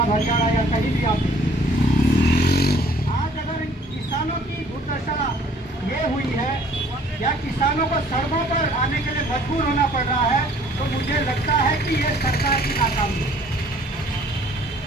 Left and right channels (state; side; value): normal; both; correlation 0.56